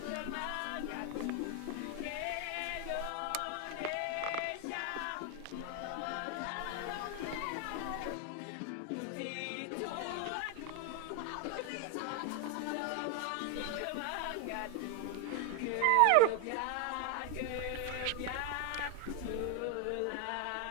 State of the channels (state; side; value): different; both; correlation 0.01